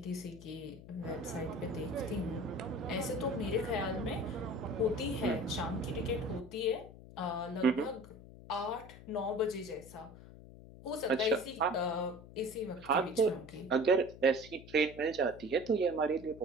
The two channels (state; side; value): noise; left; hum, 17 dB below the sound